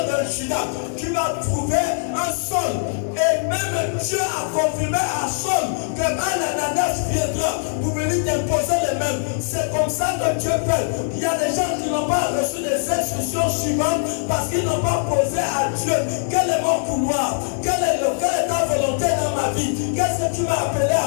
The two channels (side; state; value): right; silent; digital silence